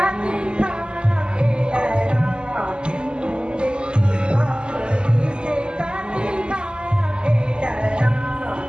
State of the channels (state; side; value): late; left; 0.048 ms